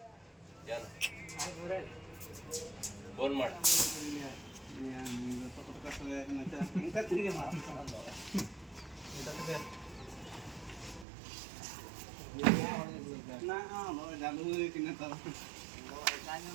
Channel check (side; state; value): left; drops out; at 11.1 s